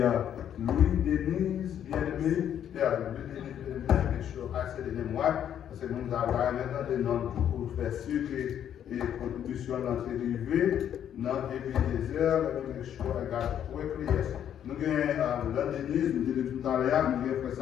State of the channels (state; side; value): quieter; right; 9.8 dB